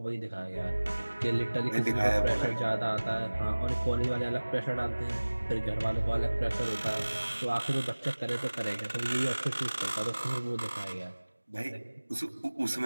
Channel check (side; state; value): both; inverted; correlation -1.00